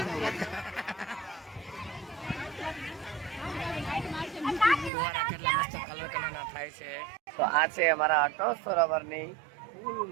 નહીં ફુવારા કેટલા મસ્ત કલર કલરના થાય છે તો આ છે અમારા અટલ સરોવરની ફૂલ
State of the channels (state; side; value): drops out; left; at 4.9 s